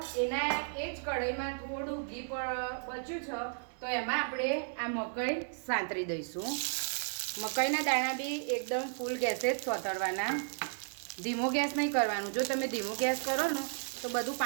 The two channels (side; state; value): left; silent; digital silence